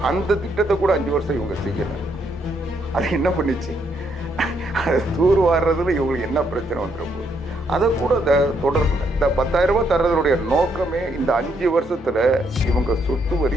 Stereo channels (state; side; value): normal; both; correlation 0.74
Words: அந்த திட்டத்தை கூட 5 வருஷம் இவங்க செய்யலை. அது என்ன பண்ணிச்சு? அதை தூர் வாடுறதுல இவங்களுக்கு என்ன பிரச்சனை வந்துட போகுது? அதை கூட தொடரல. இந்த 10,000 ரூபாய் தர்றதுடைய நோக்கமே இந்த 5 வருஷத்துல இவங்க சொத்து